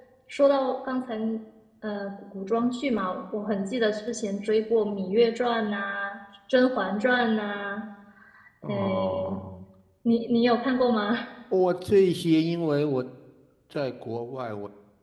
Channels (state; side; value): identical; both; correlation 1.00